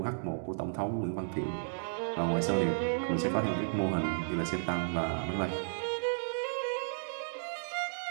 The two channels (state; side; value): silent; left; digital silence